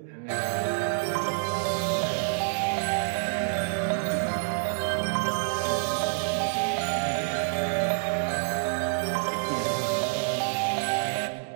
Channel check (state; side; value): silent; left; 60 dB below the other